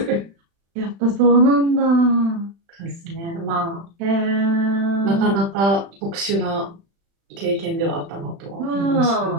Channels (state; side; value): late; left; 36 ms